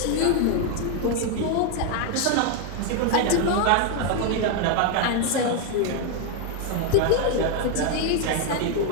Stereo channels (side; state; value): both; different; correlation 0.01